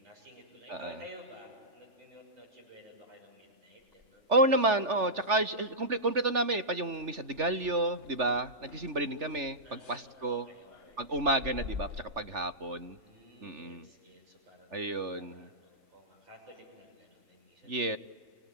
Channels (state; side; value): late; left; 3.4 ms